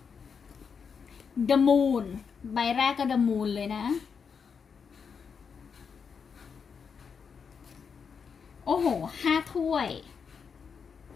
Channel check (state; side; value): quieter; right; 6.2 dB